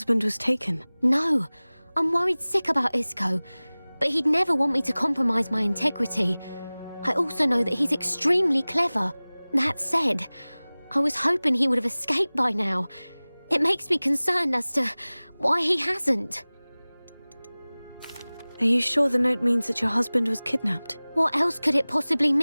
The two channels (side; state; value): both; inverted; correlation -0.99